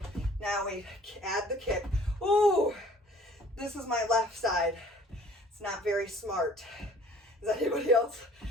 Now we add the kick. Ooh, this is my left side. It's not very smart. Is anybody else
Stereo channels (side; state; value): both; normal; correlation 0.53